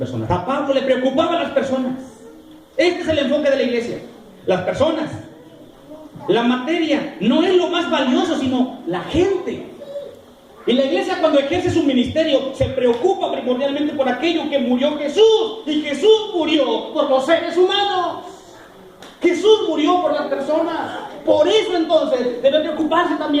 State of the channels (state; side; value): identical; both; correlation 1.00